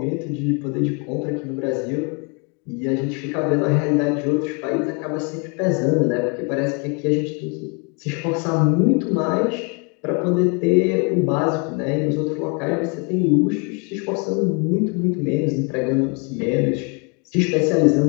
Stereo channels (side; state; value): right; quieter; 34.3 dB